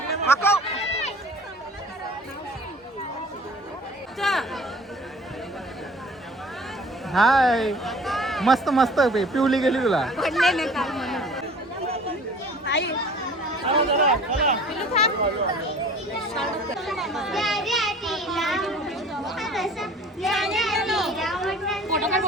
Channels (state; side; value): normal; both; correlation 0.47